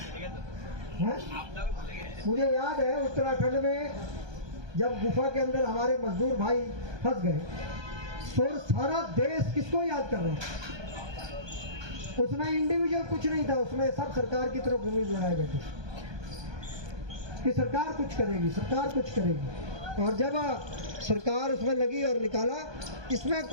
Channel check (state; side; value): late; left; 1.2 ms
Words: हैं। मुझे याद है उत्तराखंड में जब गुफा के अंदर हमारे मजदूर भाई फंस गए तो सारा देश किसको याद कर रहा है? उसमें इंडिविजुअल कुछ नहीं था, उसमें सब सरकार की तरफ उम्मीद लगाए बैठे कि सरकार कुछ करेगी, सरकार कुछ करेगी। और जब सरकार उसमें लगी और निकाला, इसमें